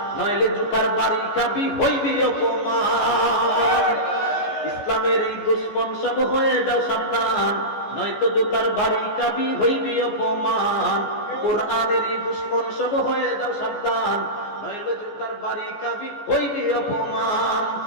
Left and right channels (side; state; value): right; late; 14 ms